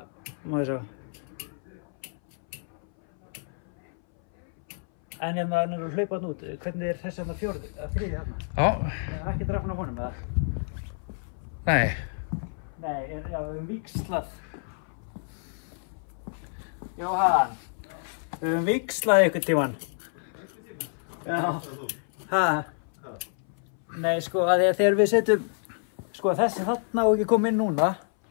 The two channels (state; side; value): silent; right; 59 dB below the other